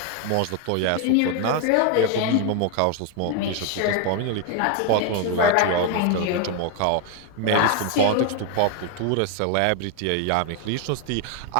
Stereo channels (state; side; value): different; both; correlation 0.01